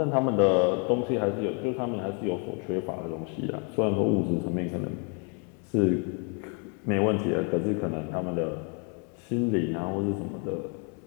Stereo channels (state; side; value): quieter; right; 38.0 dB